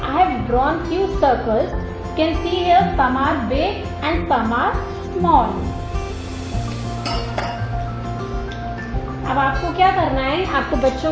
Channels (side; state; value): both; identical; correlation 1.00